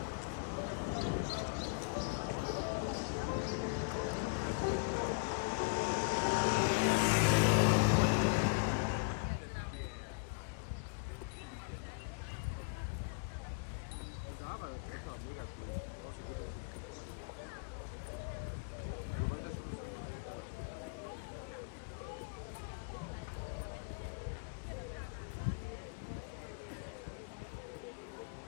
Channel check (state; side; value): quieter; right; 37.0 dB